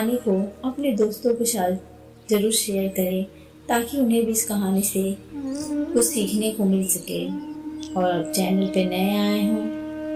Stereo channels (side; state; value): both; identical; correlation 1.00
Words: को अपने दोस्तों के साथ ज़रूर शेयर करें ताकि उन्हें भी इस कहानी से कुछ सीखने को मिल सके। और अब चैनल पे नए आए